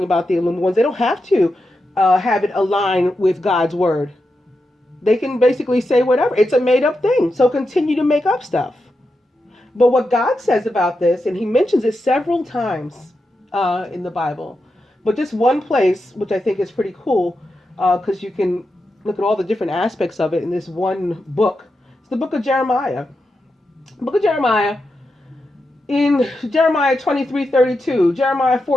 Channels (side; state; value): both; normal; correlation 0.88